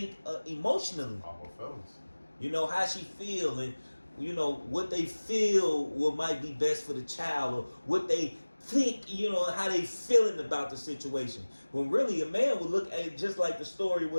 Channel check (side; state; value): both; inverted; correlation -1.00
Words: emotionally. All her feelings. You know, how she feel, and you know what they feel might be best for the child, or what they think, you know, how they feeling about the situation. When really a man would look at it just like the story